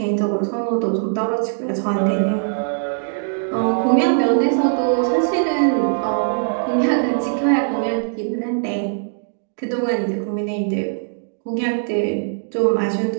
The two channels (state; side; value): silent; left; digital silence